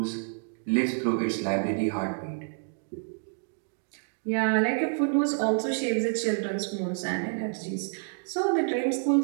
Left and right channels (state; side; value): silent; left; digital silence